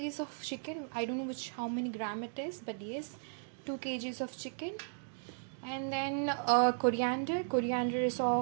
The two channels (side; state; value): left; silent; digital silence